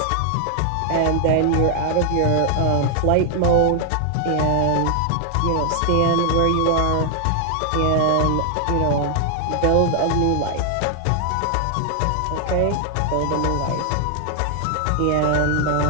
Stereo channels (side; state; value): both; different; correlation 0.00